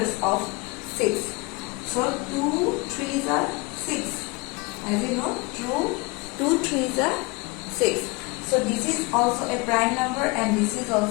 of 6. So 2 3s are 6. As you know, 2 3s are 6. So this is also a prime number, and this is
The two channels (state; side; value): quieter; right; 26.2 dB